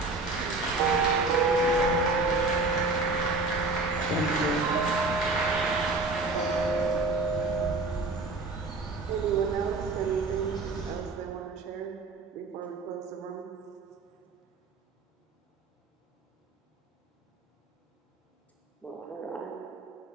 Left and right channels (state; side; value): quieter; left; 3.4 dB